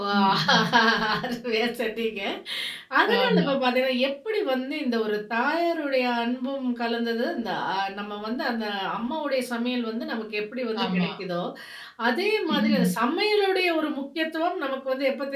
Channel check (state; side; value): identical; both; correlation 1.00